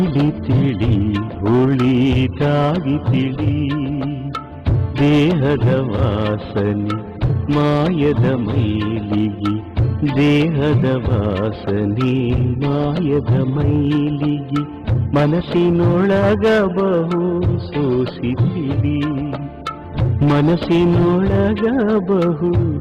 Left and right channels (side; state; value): both; identical; correlation 1.00